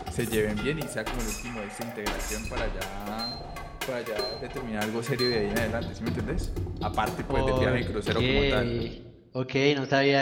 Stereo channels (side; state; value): both; identical; correlation 1.00